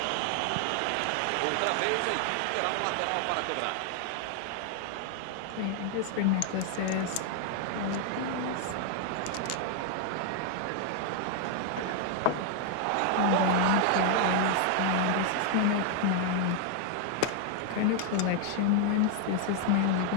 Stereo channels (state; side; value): different; both; correlation 0.00